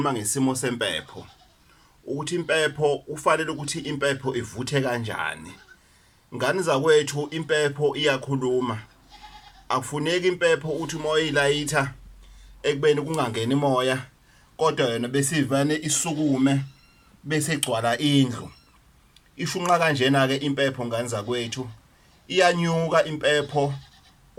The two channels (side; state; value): both; identical; correlation 1.00